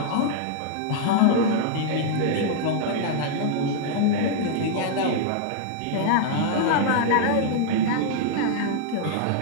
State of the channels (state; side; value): different; both; correlation -0.01